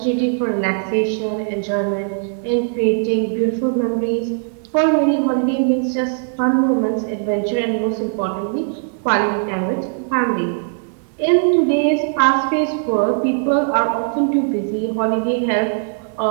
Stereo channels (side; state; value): left; silent; 66 dB below the other